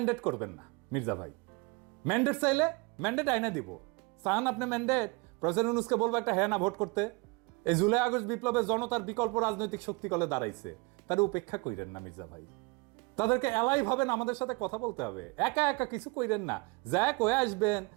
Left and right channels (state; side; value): quieter; left; 28.5 dB